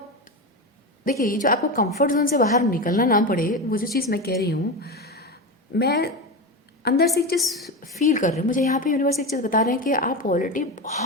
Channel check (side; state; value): both; normal; correlation 0.20